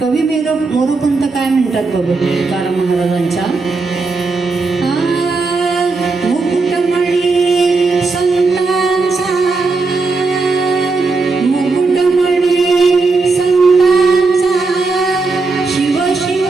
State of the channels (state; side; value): quieter; left; 3.9 dB